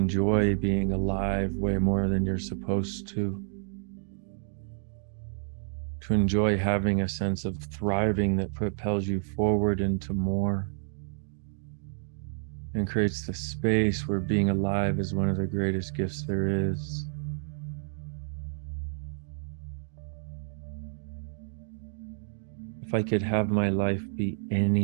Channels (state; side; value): silent; left; digital silence